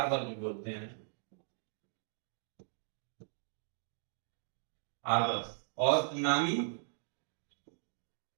भी बोलते हैं, हार्बर। और नामी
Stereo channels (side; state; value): left; silent; digital silence